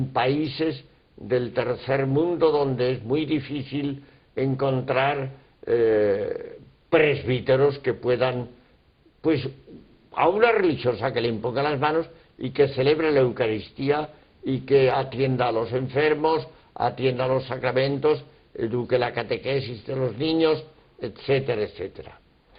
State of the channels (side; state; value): both; identical; correlation 1.00